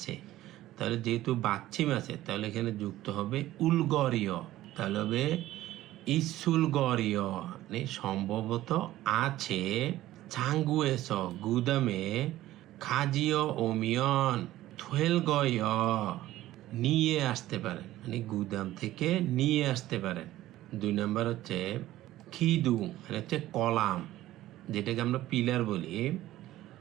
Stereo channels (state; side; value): quieter; left; 15.1 dB